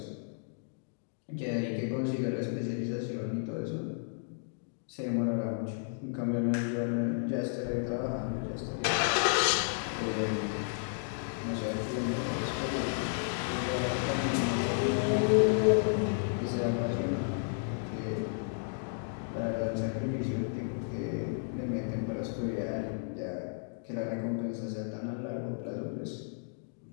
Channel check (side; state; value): right; silent; digital silence